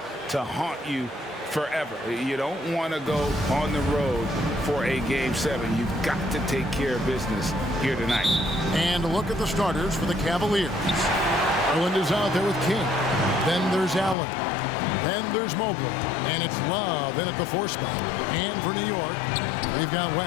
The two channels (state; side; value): drops out; right; at 14.2 s